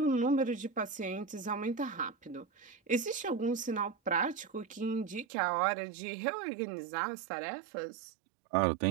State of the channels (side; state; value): left; drops out; at 5.2 s